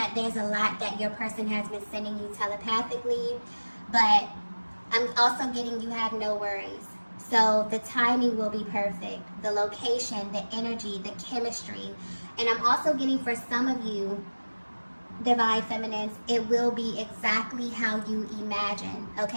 there's a lot that your person has been sending you telepathically, but I'm also getting you have no worries. So the timing will be perfect, the location, the energy, the chemistry, and I'm also getting for some of you, Divine Feminines, it will be exactly how you imagine,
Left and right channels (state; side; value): inverted; both; correlation -1.00